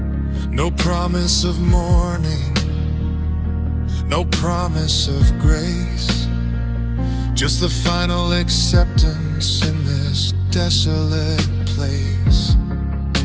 No promise of morning, no promise of grace, just the final acceptance in this desolate place.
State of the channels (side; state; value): both; identical; correlation 1.00